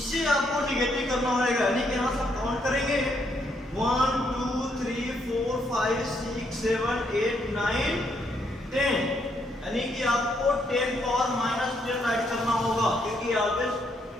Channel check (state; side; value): normal; both; correlation 0.74